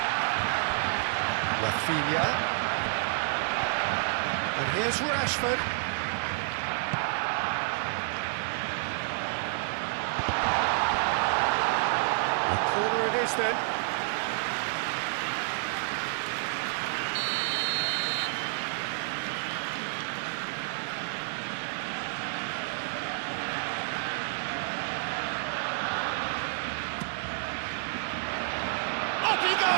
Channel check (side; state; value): left; silent; digital silence